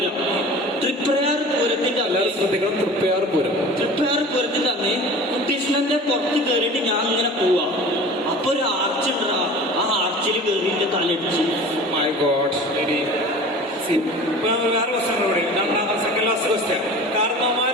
പൂരത്തിന്റെ ശ്രദ്ധിക്കണം, തൃപ്പയാർ പൂരത്തിന്റെ അന്ന് കുട്ടീഷ്ണന്റെ പുറത്ത് കയറിയിട്ട് ഞാൻ ഇങ്ങനെ പോവാ. അപ്പൊ ഒരു ആർച്ച് ഉണ്ടാ, ആ ആർച്ചിൽ കയറിയിട്ട് തലടിച്ച്. My god. വേറെ ക്വസ്റ്റ്യൻ, സെക്കൻഡ് ലാസ്റ്റ് ക്വസ്റ്റ്യൻ.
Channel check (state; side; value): normal; both; correlation 0.39